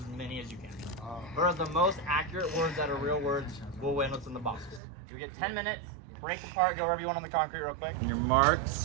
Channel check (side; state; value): left; drops out; at 4.8 s